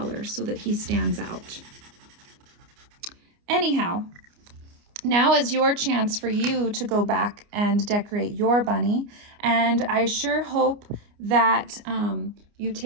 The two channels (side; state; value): left; late; 29 ms